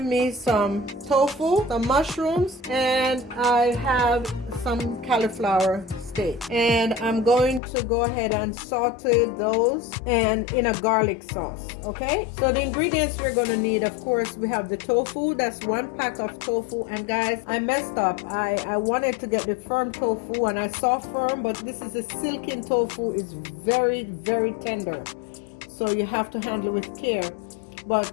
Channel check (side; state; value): right; drops out; at 7.6 s